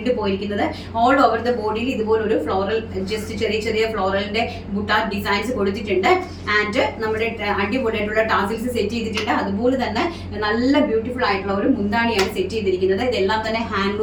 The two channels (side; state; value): both; identical; correlation 1.00